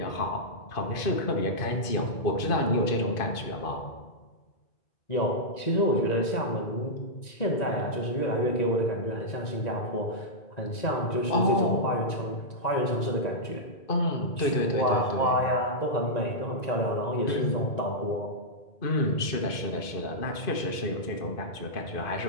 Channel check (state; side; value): late; right; 2.5 ms